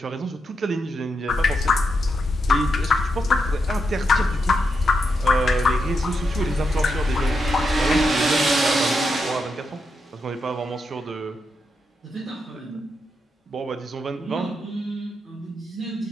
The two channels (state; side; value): normal; both; correlation 0.84